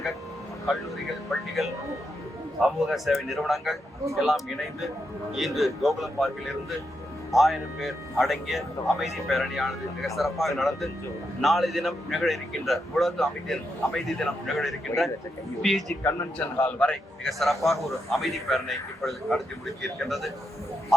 கல்லூரிகள், பள்ளிகள், சமூக சேவை நிறுவனங்கள் எல்லாம் இணைந்து இன்று கோகுலம் பார்க்கில் இருந்து 1000 பேர் அடங்கிய அமைதி பேரணியானது மிக சிறப்பாக நடந்து நாளை தினம் நிகழ இருக்கின்ற உலக அமைதி தினம் நிகழ இருக்கின்ற பிஜி கன்வென்ஷன் ஹால் வரை மிக சிறப்பாக ஒரு அமைதி பேரணி இப்பொழுது நடத்தி முடிக்க இருக்கின்றது.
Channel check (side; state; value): both; normal; correlation 0.83